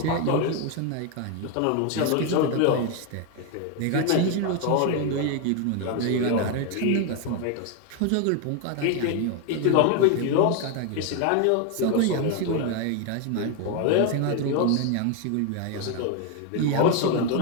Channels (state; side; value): different; both; correlation 0.01